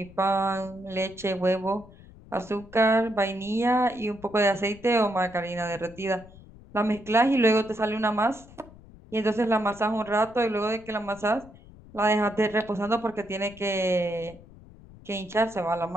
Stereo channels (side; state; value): left; noise; rumble, 21 dB below the sound